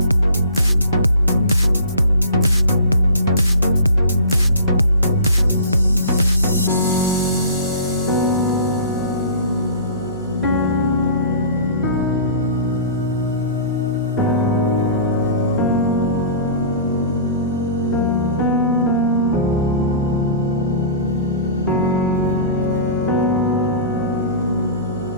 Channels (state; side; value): inverted; both; correlation -0.41